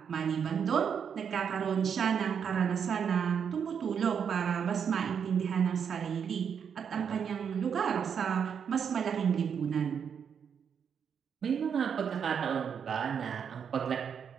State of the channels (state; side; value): quieter; left; 7.3 dB